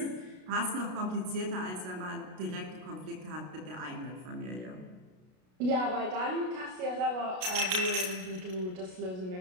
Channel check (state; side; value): late; left; 33 ms